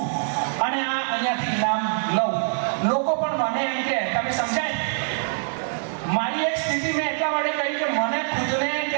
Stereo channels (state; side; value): silent; left; 62 dB below the other